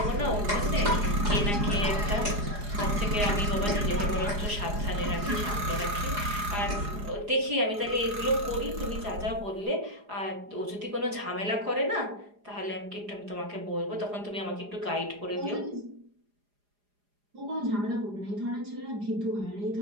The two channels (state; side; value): late; left; 4.9 ms